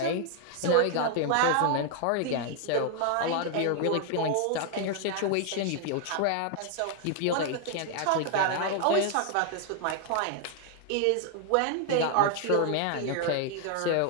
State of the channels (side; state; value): both; different; correlation 0.00